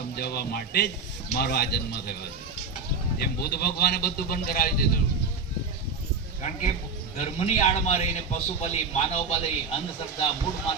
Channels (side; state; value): left; quieter; 4.6 dB